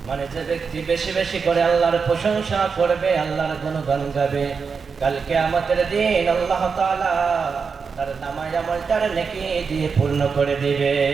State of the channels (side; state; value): left; quieter; 5.5 dB